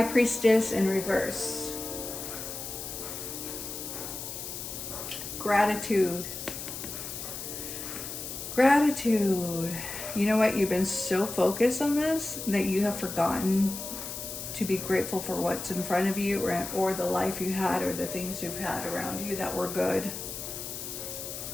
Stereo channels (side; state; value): left; noise; hiss, 7 dB below the sound